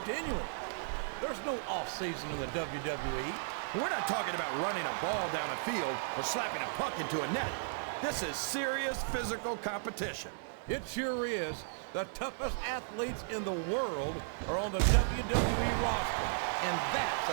There's no off-season in the WWE. We're not talking about running a ball down a field or slapping a puck into a net. This is serious physical competition. It sure is. The toughest athletes in the world are on the WWE roster, and that's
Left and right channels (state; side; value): silent; left; digital silence